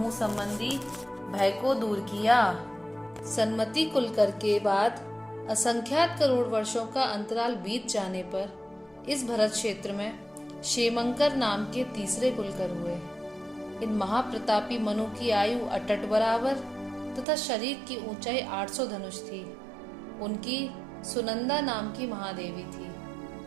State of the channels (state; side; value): drops out; left; at 17.2 s